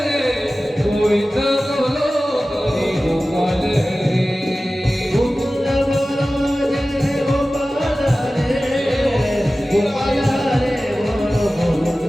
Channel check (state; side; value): normal; both; correlation 0.96